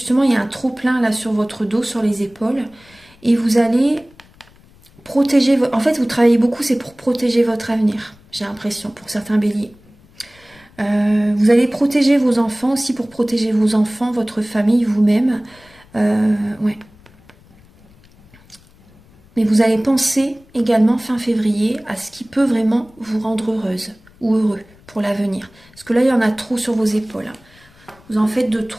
il y a un trop-plein là sur votre dos, sur les épaules. Et vous allez protéger, en fait vous travaillez beaucoup, c'est pour protéger votre avenir, j'ai l'impression, pour certains béliers. Vous allez protéger vos enfants aussi, pour protéger vos enfants, votre famille, vous-même. Ouais. Mais vous allez penser également fin février à ce qui peut vraiment vous rendre heureuse ou heureux pour l'avenir. Parce que là, il y en a trop sur vos épaules. Vous en faites de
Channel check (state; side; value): noise; left; rumble, 28 dB below the sound